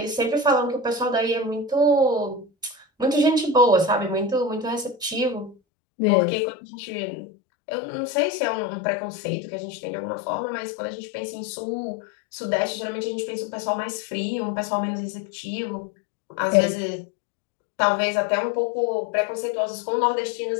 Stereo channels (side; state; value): right; drops out; at 5.6 s